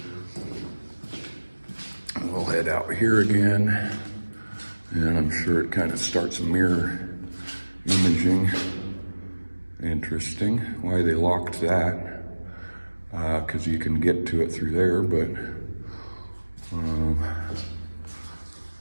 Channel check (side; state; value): both; inverted; correlation -1.00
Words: We'll head out here again, and I'm sure it kind of starts mirror imaging. Interesting why they locked that, because you can get to it through there, but